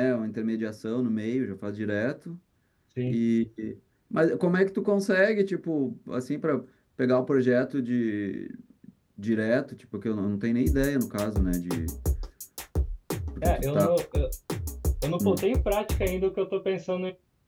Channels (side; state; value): both; identical; correlation 1.00